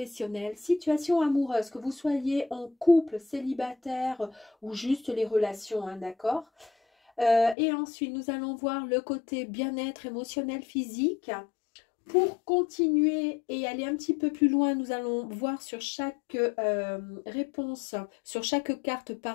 situation amoureuse, que vous soyez en couple, célibataire ou juste les relations, hein, d'accord? Et ensuite, nous allons voir le côté bien-être émotionnel, physique. Pour continuer et aller un petit peu plus loin, nous allons voir sur chaque réponse, sur chaque carte,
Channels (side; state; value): right; drops out; at 7.6 s